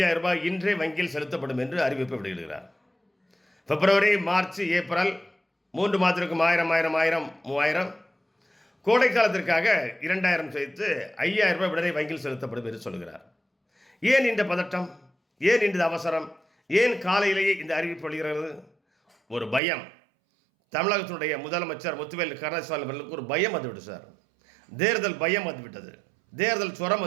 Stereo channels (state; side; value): drops out; left; at 19.6 s